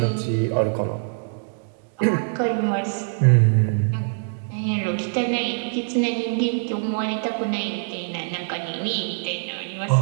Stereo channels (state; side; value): silent; left; 62 dB below the other